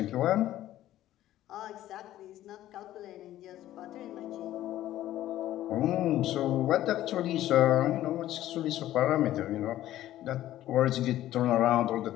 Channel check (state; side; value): quieter; right; 13.7 dB